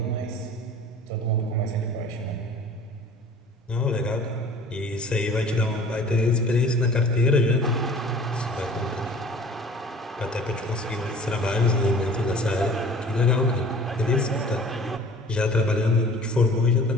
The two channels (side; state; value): both; normal; correlation 0.46